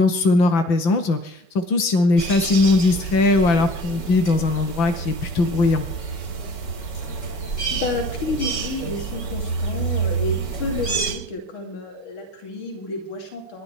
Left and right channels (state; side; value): late; right; 5.9 ms